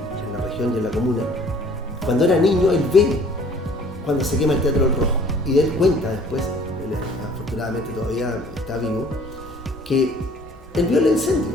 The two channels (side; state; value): both; normal; correlation 0.54